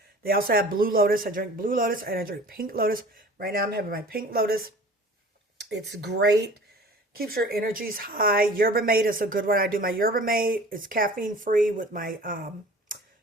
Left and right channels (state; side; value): normal; both; correlation 0.44